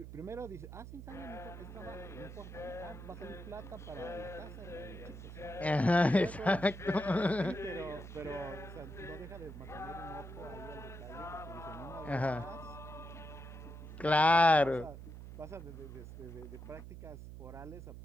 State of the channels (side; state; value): right; noise; hum, 11 dB below the sound